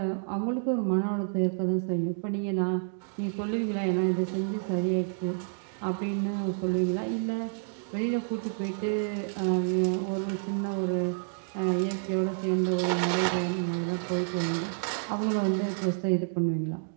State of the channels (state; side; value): silent; left; digital silence